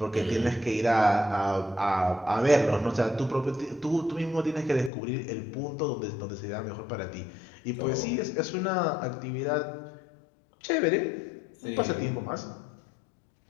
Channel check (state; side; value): drops out; right; at 4.9 s